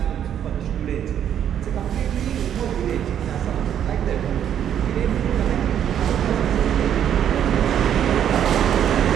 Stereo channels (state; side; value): quieter; left; 9.7 dB